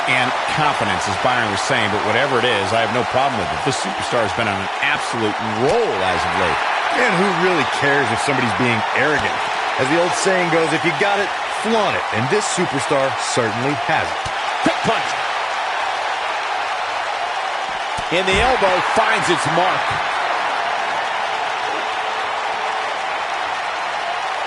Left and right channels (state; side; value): identical; both; correlation 1.00